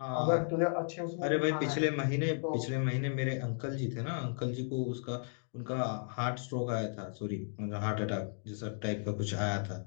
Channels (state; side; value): silent; right; digital silence